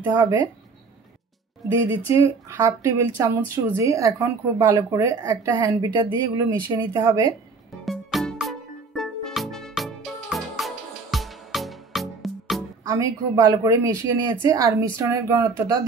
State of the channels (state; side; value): quieter; left; 4.4 dB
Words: হবে। দিয়ে দিচ্ছি 1/2 টেবিল চামচ সুজি। এখন খুব ভালো করে একটা হ্যান্ড বিটার দিয়ে এগুলো মিশিয়ে নিতে হবে। আমি খুব ভালো করে মিশিয়ে নিয়েছি। আর মিশ্রণের ঘনত্বটা